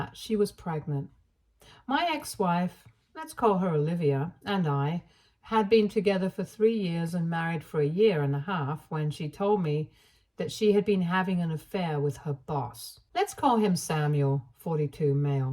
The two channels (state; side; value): identical; both; correlation 1.00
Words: she was pregnant. My ex-wife, let's call her Olivia, and I had been together for 3 years and married for a year and a half when she told me that she had been having an affair with her boss. Let's call him Samuel, 42